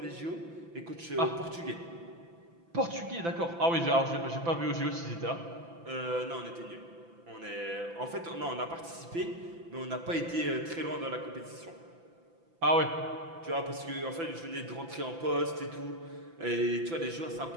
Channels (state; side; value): late; left; 6.0 ms